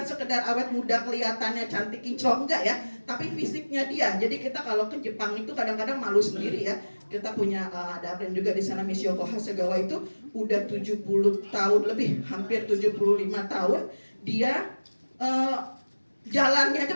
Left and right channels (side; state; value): both; inverted; correlation -1.00